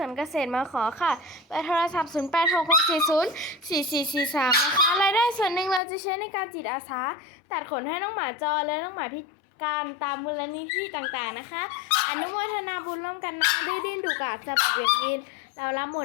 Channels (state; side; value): drops out; right; at 5.8 s